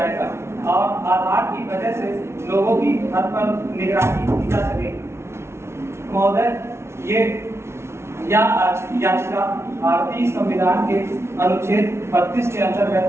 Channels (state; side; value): late; left; 0.13 ms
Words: और आधार की वजह से लोगों की हद पर निगरानी की जा सकेगी। महोदय, याचिका भारतीय संविधान के अनुच्छेद 32 के अंतर्गत